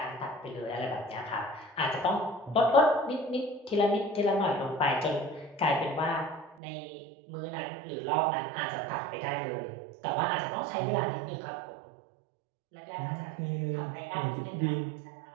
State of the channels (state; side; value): drops out; left; at 6.6 s